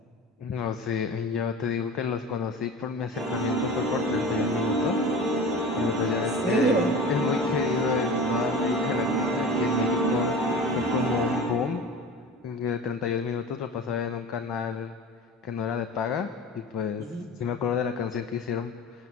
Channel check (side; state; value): both; normal; correlation 0.34